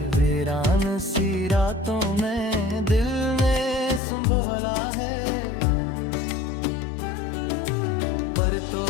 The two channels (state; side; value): drops out; right; at 4.0 s